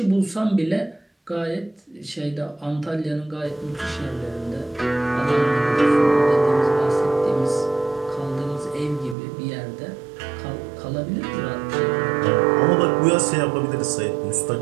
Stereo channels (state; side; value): drops out; left; at 9.2 s